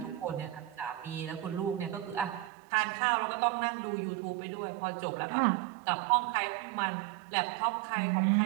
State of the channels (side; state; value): left; drops out; at 2.5 s